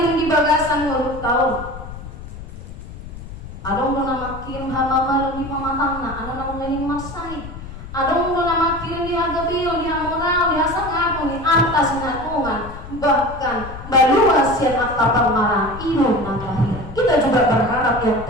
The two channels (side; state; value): left; noise; rumble, 12 dB below the sound